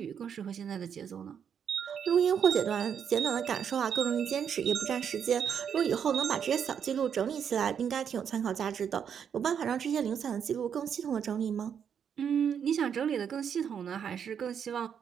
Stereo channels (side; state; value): left; quieter; 7.9 dB